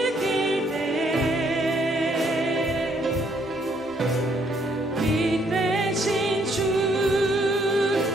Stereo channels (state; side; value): normal; both; correlation 0.69